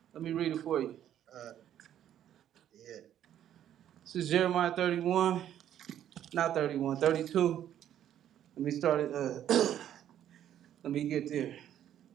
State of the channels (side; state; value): left; quieter; 10.8 dB